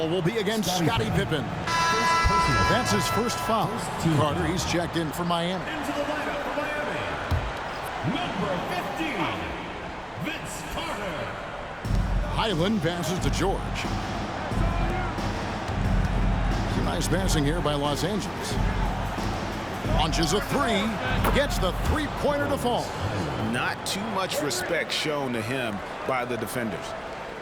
will be against Scottie Pippen. That's his first foul. Carter, he's checked in for Miami. Into the lineup for Miami, number 15, Vince Carter. Highland passes to George. Some nice passing here by Los Angeles. Launches a 3. Gets the three-pointer to fall. Not too much respect shown to him by the defenders.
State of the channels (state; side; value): identical; both; correlation 1.00